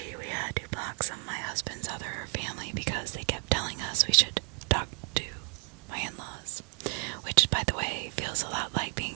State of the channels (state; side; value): quieter; left; 36.0 dB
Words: we had to block some of my husband's other family because they kept telling us we should talk to my in-laws, which, by the way, feels a lot like being